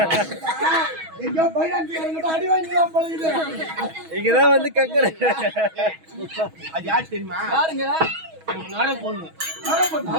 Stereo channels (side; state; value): left; late; 6.2 ms